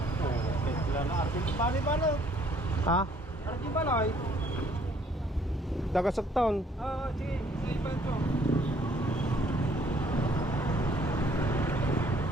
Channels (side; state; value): both; normal; correlation 0.62